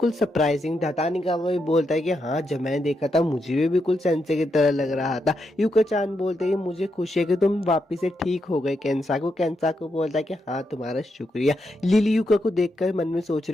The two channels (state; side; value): normal; both; correlation 0.83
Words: सरप्राइजिंग था। तानिकावा भी बोलता है कि हाँ जब मैंने देखा था मुझे भी बिल्कुल सेंसे की तरह लग रहा था। यूका चान बोलते हैं मुझे खुशी है कि तुम वापिस से ठीक हो गए केंसाकू। केंसाकू बोलता है कि हाँ तुम्हारा शुक्रिया। लिली यूका को देखकर मन में सोच